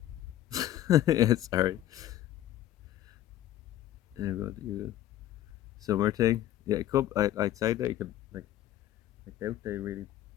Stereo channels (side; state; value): right; quieter; 13.0 dB